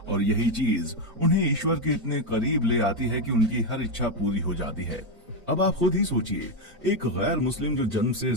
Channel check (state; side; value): normal; both; correlation 0.06